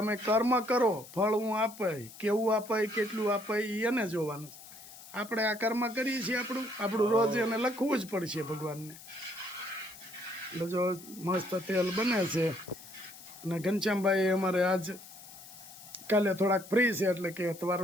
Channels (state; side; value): noise; left; hiss, 17 dB below the sound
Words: કર્મ કરો, ફળ હું આપાય, કેવું આપાય, કેટલું આપાય એને જોવાનું. આપણે આ કર્મ કરીએ છીએ આપણું રોજ એને લખવું જ પડશે ભગવાનને. એટલે જો મસ્ત તેલ બને છે. અને ઘનશ્યામભાઈ અમારે આજ કાલે થોડાક ફ્રી છે એટલે કે